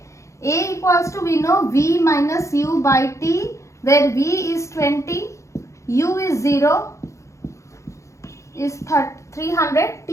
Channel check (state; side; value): late; right; 0.15 ms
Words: A equals to, we know, V minus U by T, where V is 20, U is 0, is 300